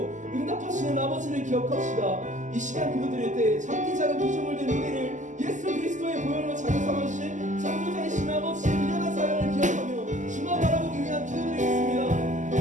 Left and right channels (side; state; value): left; late; 0.36 ms